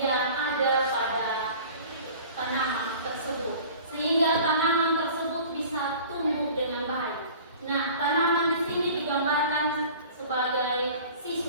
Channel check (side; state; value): both; inverted; correlation -0.44